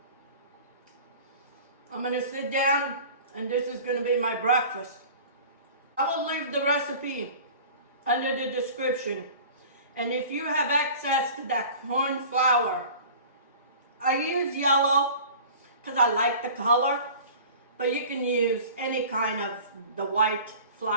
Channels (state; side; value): inverted; both; correlation -0.42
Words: I'm gonna sit down, and this is gonna be my breakfast. I will leave the recipe under the description. And if you have access to that corn flour, I use yellow because I like the color, but you can use any kind of the white